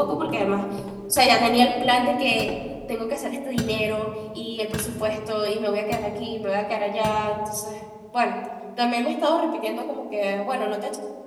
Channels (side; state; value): both; identical; correlation 1.00